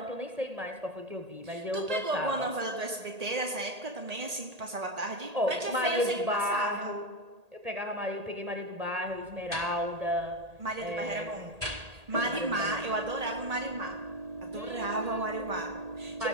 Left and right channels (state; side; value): late; left; 1.8 ms